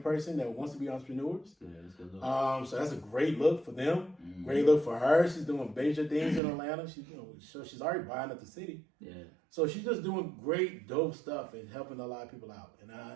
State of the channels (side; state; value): left; drops out; at 6.4 s